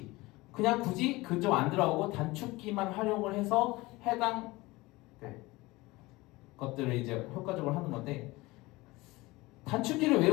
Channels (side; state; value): right; quieter; 21.2 dB